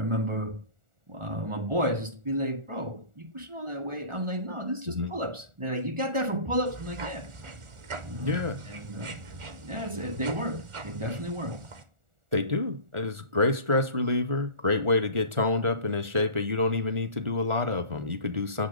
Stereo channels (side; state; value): left; late; 1.4 ms